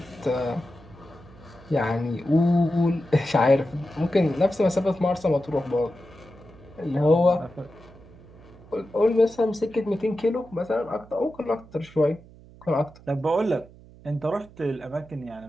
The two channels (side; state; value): right; noise; hum, 22 dB below the sound